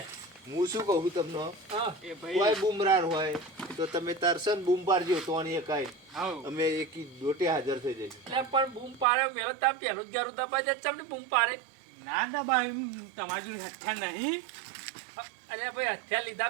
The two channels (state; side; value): drops out; left; at 9.1 s